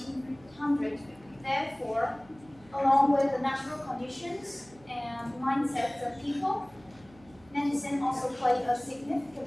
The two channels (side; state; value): right; noise; hum, 26 dB below the sound